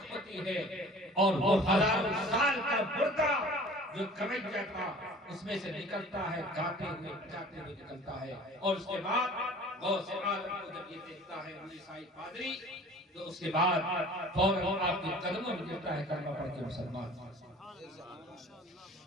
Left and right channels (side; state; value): both; normal; correlation 0.45